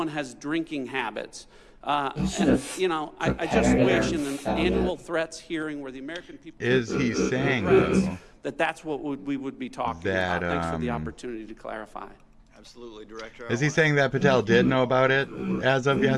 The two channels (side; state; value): both; identical; correlation 1.00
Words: has drinking habits. I just wish in an annual threats hearing where the American people Is he saying that's what we would be talking about. Thanks for the opportunity to clarify. Absolutely, Director. Is he saying that Patel did know about it as of